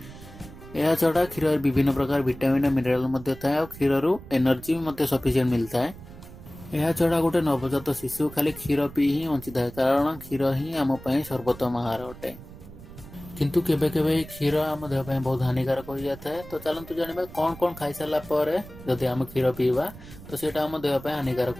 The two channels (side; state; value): right; noise; rumble, 17 dB below the sound